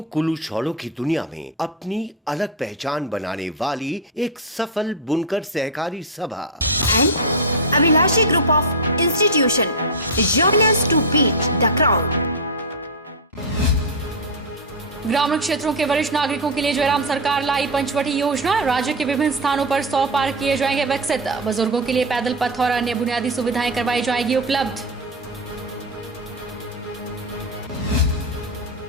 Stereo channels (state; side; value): normal; both; correlation 0.07